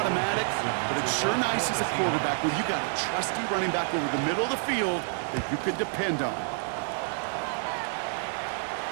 but it's sure nice as a quarterback when you got a trusty running back over the middle of the field that you can depend on.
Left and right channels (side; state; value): left; silent; 58 dB below the other